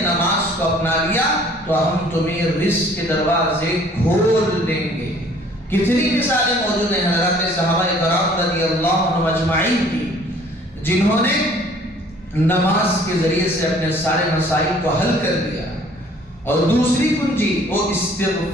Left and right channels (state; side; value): normal; both; correlation 0.55